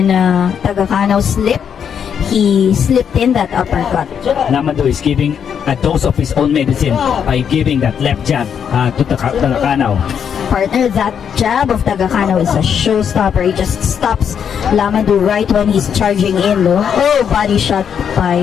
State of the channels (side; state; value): right; quieter; 7.8 dB